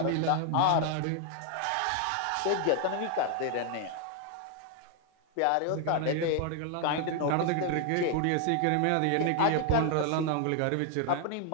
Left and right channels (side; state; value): both; different; correlation 0.00